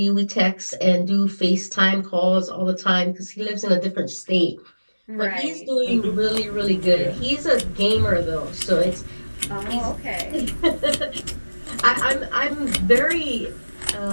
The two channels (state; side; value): inverted; both; correlation -1.00